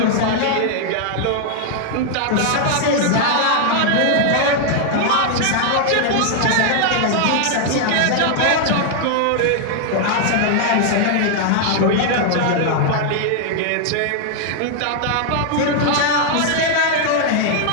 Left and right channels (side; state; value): both; different; correlation 0.00